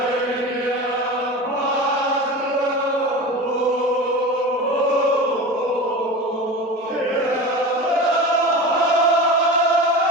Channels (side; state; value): both; normal; correlation 0.30